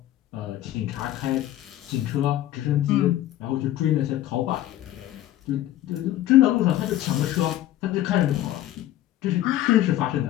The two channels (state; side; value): quieter; right; 13.7 dB